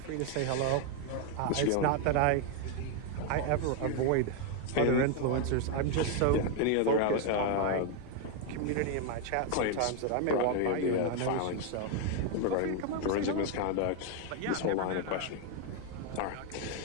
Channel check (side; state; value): both; different; correlation 0.01